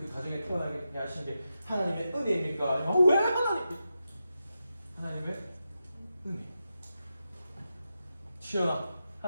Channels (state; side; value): inverted; both; correlation -0.89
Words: 가정에 태어나게 하신 게 하나님의 은혜입니까? 아니면 왜 하나님의 은혜. 치열한